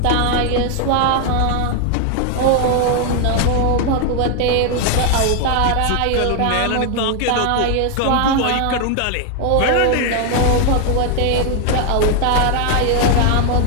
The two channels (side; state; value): both; different; correlation 0.01